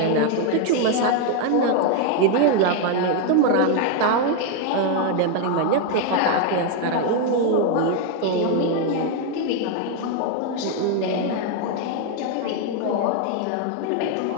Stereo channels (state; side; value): different; both; correlation 0.01